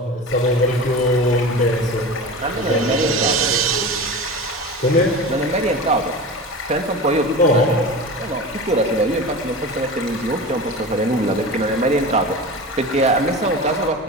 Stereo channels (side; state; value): both; normal; correlation 0.31